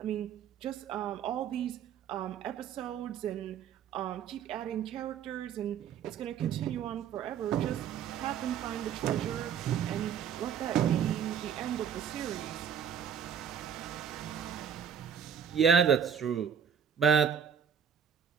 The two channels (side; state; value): left; quieter; 8.1 dB